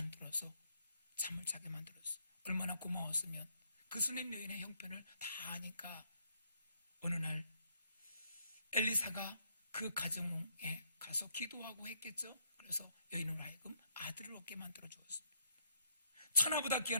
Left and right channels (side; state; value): both; inverted; correlation -0.72